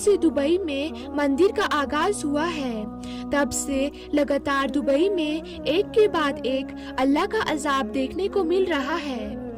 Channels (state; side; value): identical; both; correlation 1.00